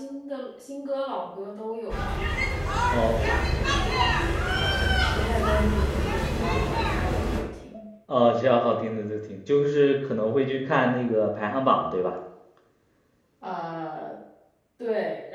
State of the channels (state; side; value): identical; both; correlation 1.00